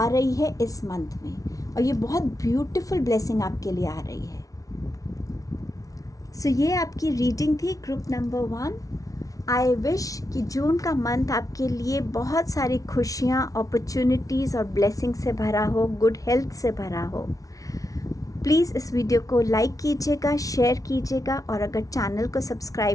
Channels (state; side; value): late; right; 0.17 ms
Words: रही है इस मंथ में, और ये बहुत ब्यूटीफुल ब्लेसिंग आपके लिए आ रही है। सो ये आपकी रीडिंग थी ग्रुप नंबर 1। आई विश कि जून का मंथ आपके लिए बहुत सारी खुशियाँ, अपॉर्चुनिटीज़ और ब्लेसिंग से भरा हो, गुड हेल्थ से भरा हो। प्लीज़ इस वीडियो को लाइक कीजिएगा, शेयर कीजिएगा, और अगर चैनल को